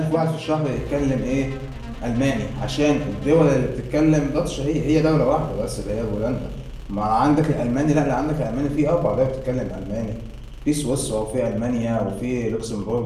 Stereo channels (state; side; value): identical; both; correlation 1.00